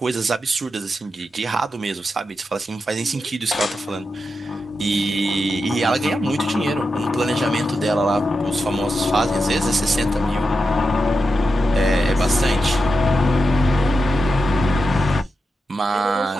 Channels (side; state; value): both; normal; correlation 0.88